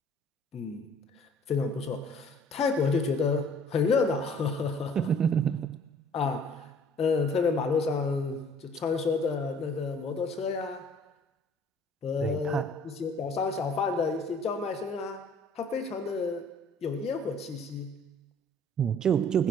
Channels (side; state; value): both; normal; correlation 0.54